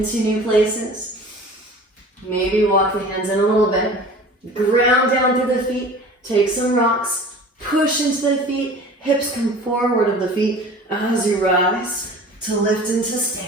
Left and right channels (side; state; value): both; normal; correlation 0.42